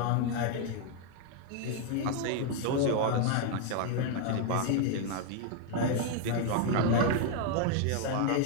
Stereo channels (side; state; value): both; different; correlation 0.00